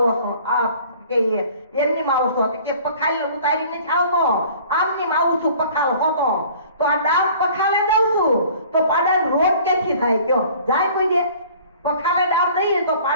છો? આ કે એમની માં આવો છો? કે પખાલ ઉતારીને આવતો, આમની માં આવું છું પખાલ હોતો. તો આ ડામ પખાલે દઉં છું તો પાડાનો રોગ ક્યાંથી થાય? કયો જાય કોઈ દે? પખાલે ડામ દઈએ તો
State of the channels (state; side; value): inverted; both; correlation -0.50